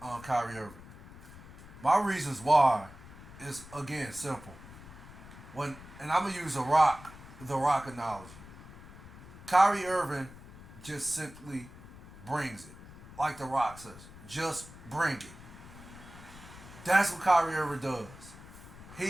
Kyrie Irving. My reasons why is again simple. And I'm gonna use the Rock analogy. Kyrie Irving just simply brings it, like the Rock says. Just bring it. That's what Kyrie Irving does.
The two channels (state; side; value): noise; left; rumble, 17 dB below the sound